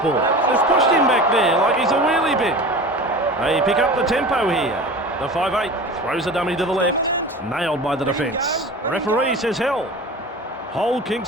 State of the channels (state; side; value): normal; both; correlation 0.35